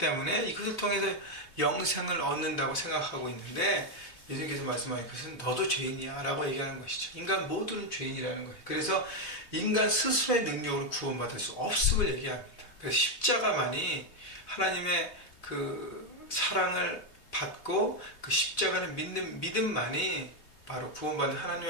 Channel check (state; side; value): late; right; 3.4 ms